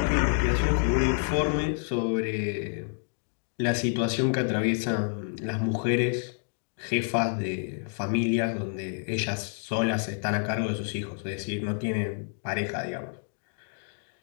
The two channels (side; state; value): right; silent; 59 dB below the other